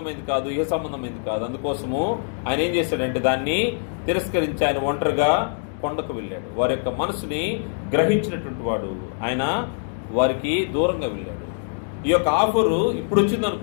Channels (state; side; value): silent; right; digital silence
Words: కాదు, ఇహ సంబంధమైంది కాదు. అందుకోసము ఆయన ఏం చేశాడంటే, దాన్ని తిరస్కరించి ఆయన ఒంటరిగా కొండకు వెళ్ళాడు. వారి యొక్క మనసుని గ్రహించినటువంటి వాడు ఆయన వారికి దూరంగా వెళ్ళాడు. ఈ యొక్క ఆఫరు ఇప్పుడు వచ్చింది